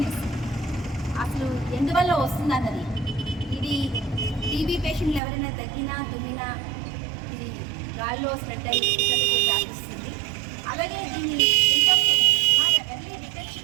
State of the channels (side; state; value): left; drops out; at 5.2 s